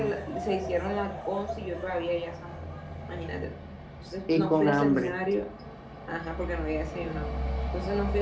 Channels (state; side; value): identical; both; correlation 1.00